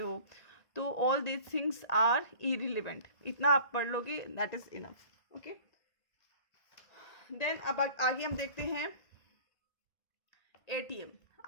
तो all this things are irrelevant, इतना आप पढ़ लोगे, that is enough. Okay, then अब आगे हम देखते हैं एटीएम.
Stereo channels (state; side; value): late; right; 1.8 ms